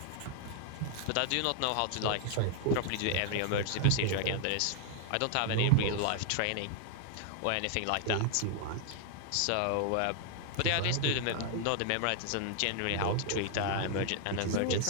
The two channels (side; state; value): both; different; correlation 0.00